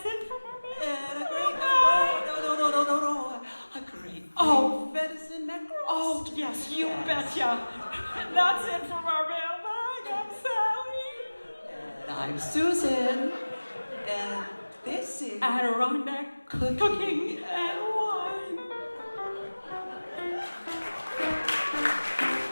it for our meal. And a great no. A great venison neck roast. Oh, yes, you betcha. And that's it from our mailbag. I'm Sally. And I'm Susan. And this is Adirondack Cooking and Wine.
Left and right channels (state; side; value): inverted; both; correlation -1.00